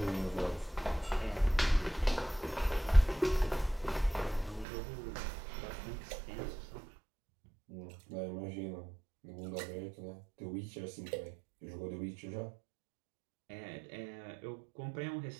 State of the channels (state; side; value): drops out; left; at 4.7 s